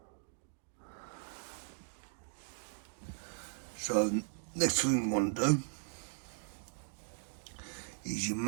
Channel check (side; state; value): left; silent; digital silence